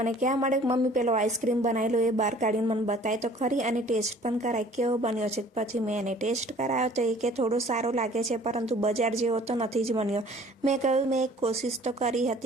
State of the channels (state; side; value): normal; both; correlation 0.52